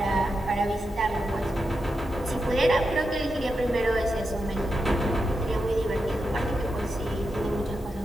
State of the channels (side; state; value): both; normal; correlation 0.87